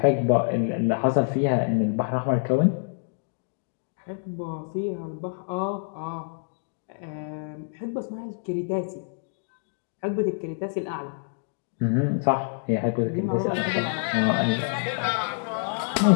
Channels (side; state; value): right; silent; digital silence